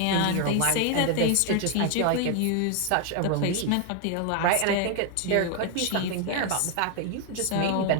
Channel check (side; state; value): both; different; correlation 0.01